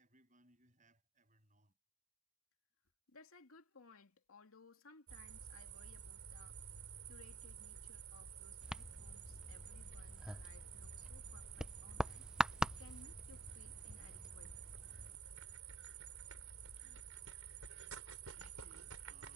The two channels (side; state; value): both; normal; correlation 0.76